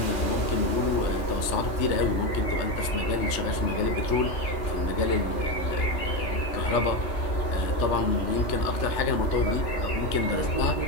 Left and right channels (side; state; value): right; late; 3.3 ms